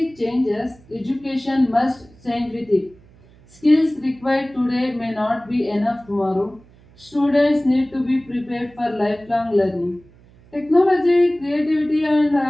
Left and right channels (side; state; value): right; noise; hum, 26 dB below the sound